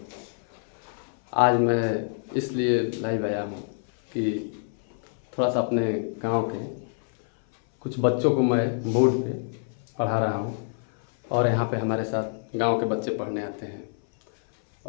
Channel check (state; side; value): silent; right; 57 dB below the other